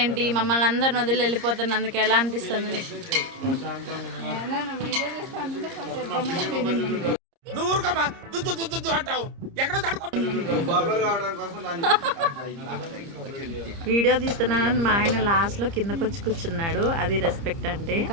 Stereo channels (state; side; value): late; left; 30 ms